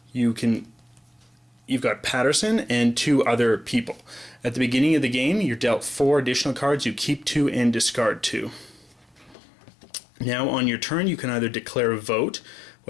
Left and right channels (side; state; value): right; drops out; at 9.3 s